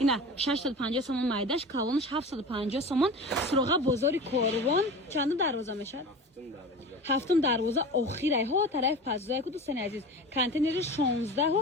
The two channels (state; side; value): normal; both; correlation 0.33